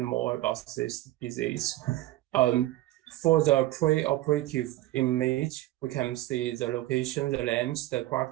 more about this disease. For the pre-operative image, we can see the location, the length, the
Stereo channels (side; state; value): left; quieter; 16.5 dB